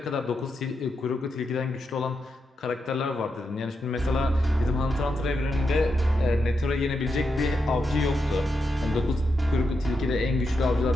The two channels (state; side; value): normal; both; correlation 0.85